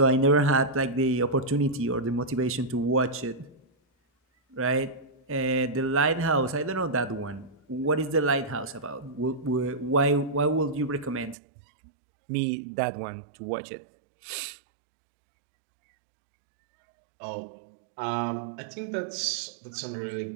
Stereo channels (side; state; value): left; drops out; at 11.4 s